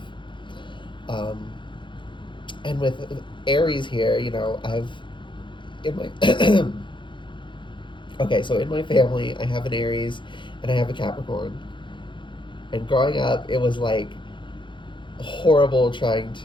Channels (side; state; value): right; late; 0.23 ms